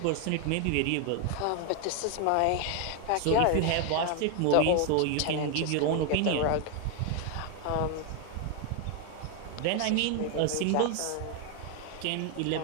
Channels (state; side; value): different; both; correlation 0.01